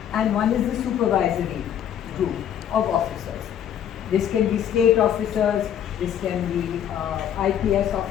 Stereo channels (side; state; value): right; quieter; 9.7 dB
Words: and one is the supervisory group of officers. This can be state officers, this can be IPS